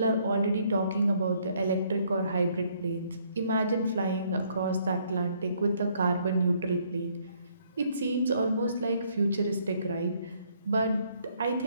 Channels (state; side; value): inverted; both; correlation -0.67